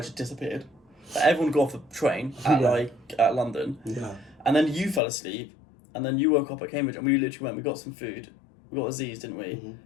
had disappeared. Like, everyone got off the train at London, and then you fell asleep, and then you woke up at Cambridge, and we literally we got some food, we got Aziz, didn't we? Mm-hmm.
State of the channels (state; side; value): drops out; right; at 5.0 s